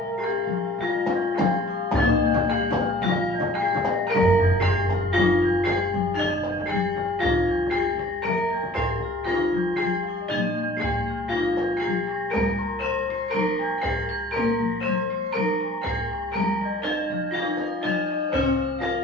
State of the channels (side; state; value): both; normal; correlation 0.50